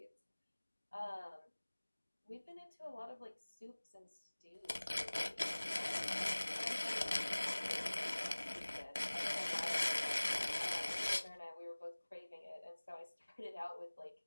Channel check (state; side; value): inverted; both; correlation -1.00